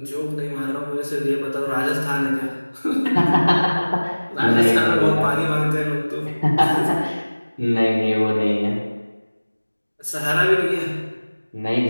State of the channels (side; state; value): both; inverted; correlation -1.00